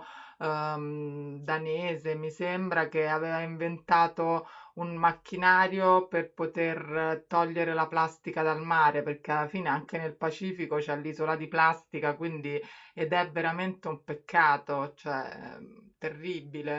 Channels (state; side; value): identical; both; correlation 1.00